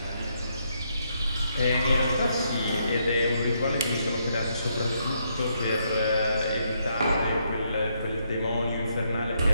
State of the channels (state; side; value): inverted; both; correlation -0.76